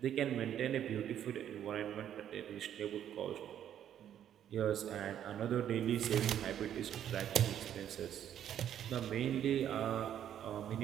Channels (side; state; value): left; quieter; 10.2 dB